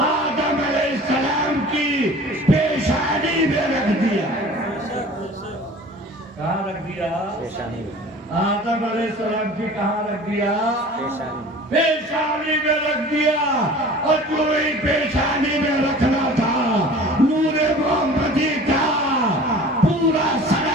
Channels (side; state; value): both; normal; correlation 0.43